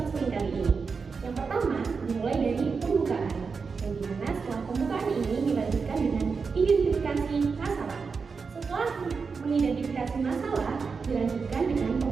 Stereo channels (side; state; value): left; quieter; 5.1 dB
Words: kali ini. Yang pertama, dimulai dari pembukaan, yang dimana setelah pembukaan ini dilanjutkan dengan identifikasi masalah. Setelah mengidentifikasi masalah, dilanjutkan dengan